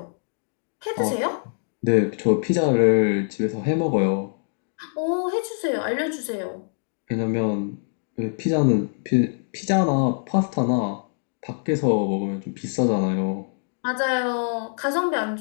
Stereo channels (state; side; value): silent; right; digital silence